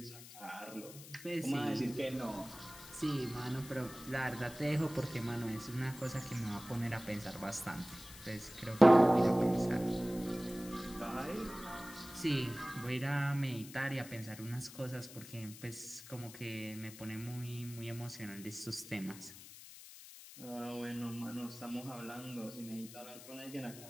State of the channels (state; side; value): noise; left; hiss, 16 dB below the sound